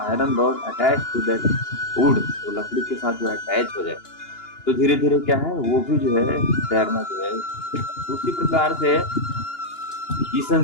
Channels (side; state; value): right; late; 2.9 ms